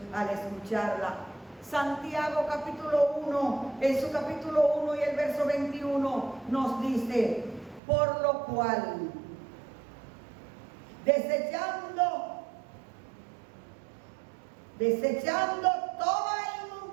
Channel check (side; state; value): left; drops out; at 7.8 s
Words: al escucharla. Santiago capítulo 1, en su capítulo 1 y el verso 21 nos dice: por lo cual, desechando toda